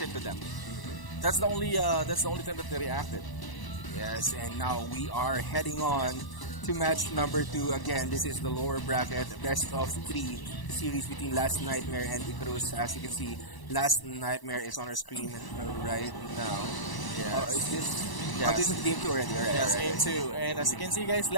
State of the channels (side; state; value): right; late; 1.0 ms